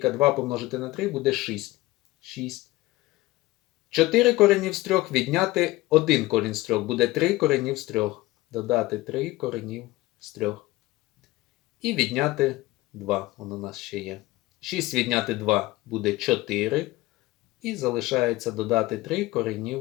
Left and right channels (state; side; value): quieter; right; 19.0 dB